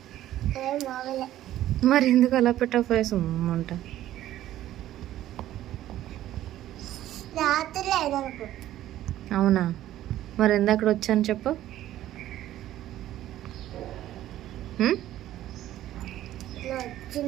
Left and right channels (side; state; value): left; quieter; 13.4 dB